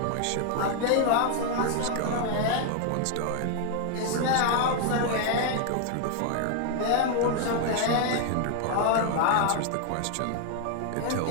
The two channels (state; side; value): different; both; correlation 0.00